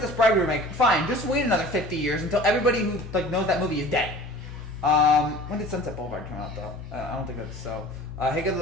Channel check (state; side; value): normal; both; correlation 0.44